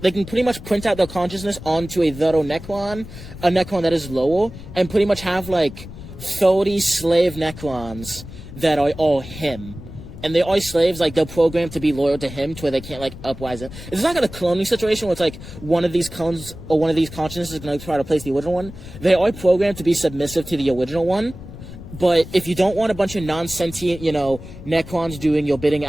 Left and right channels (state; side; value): noise; left; rumble, 14 dB below the sound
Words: pretty much print out their consciousness onto a Vero Necron, a Necron that is lower, and pretty much have, 30 slave Necrons that are all him. And they are slaves, they're programmed to be loyal to him, to where they can't, uprise it. It's not like a cloning situation where it's one of these clones or one of these consciousnesses is going to try to place the original one. They are programmed to be submissive to the original one. But if you don't want a bunch of non-sentient, Necrons doing your bidding